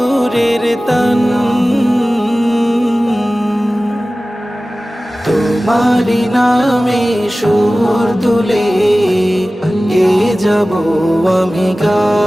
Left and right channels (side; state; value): both; normal; correlation 0.97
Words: তান। তোমারি নামে সুর তুলে গে যাব আমি